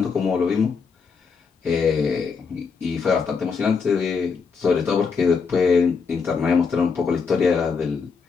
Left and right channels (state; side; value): quieter; right; 5.4 dB